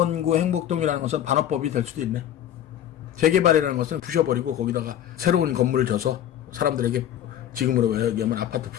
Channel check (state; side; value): quieter; right; 10.9 dB